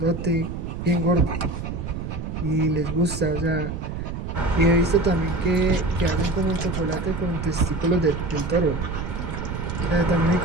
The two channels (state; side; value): noise; right; rumble, 6 dB below the sound